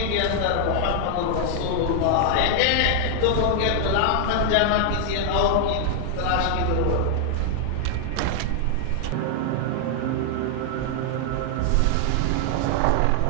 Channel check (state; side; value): different; both; correlation 0.00